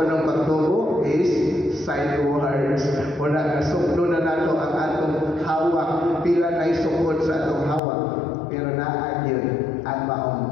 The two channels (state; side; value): drops out; right; at 7.8 s